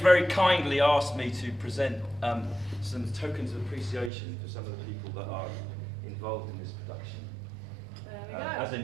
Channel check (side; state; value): left; drops out; at 4.1 s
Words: kindly asked me to present some tokens of appreciation for some of the people that are involved in this production. There we go. As a